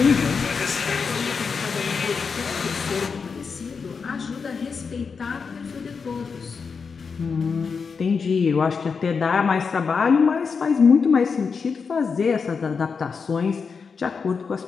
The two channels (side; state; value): right; quieter; 5.4 dB